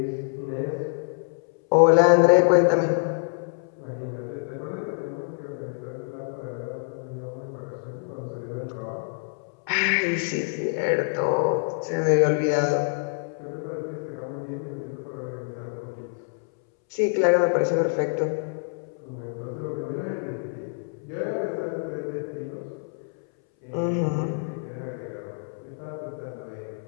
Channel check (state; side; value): silent; right; 61 dB below the other